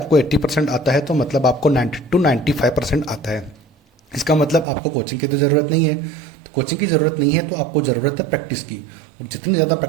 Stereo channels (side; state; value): left; drops out; at 4.7 s